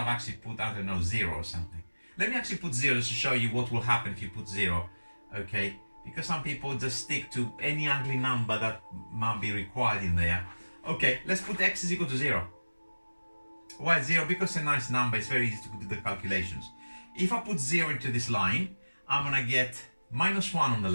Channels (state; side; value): inverted; both; correlation -1.00